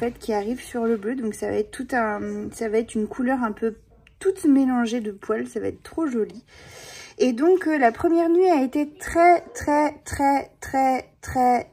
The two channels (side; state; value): both; identical; correlation 1.00